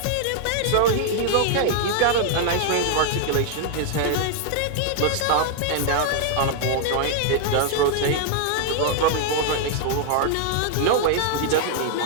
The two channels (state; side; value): different; both; correlation 0.00